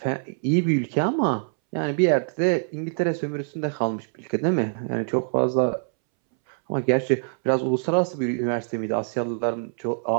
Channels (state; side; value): silent; left; 62 dB below the other